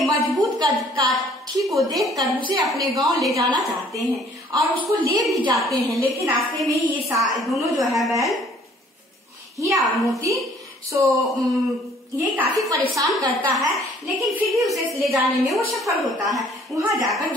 मजबूत काठी को देखकर उसे अपने गांव ले जाना चाहते हैं, और उसको ले भी जाते हैं। लेकिन रास्ते में ये दोनों जो है बैल हीरा और मोती ये काफी परेशान करता है, लेकिन फिर भी उसे ले जाने में वो सफल होता है। वहां जाकर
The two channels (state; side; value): normal; both; correlation 0.58